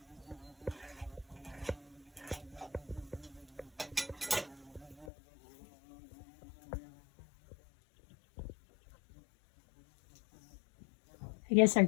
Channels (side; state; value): right; drops out; at 5.1 s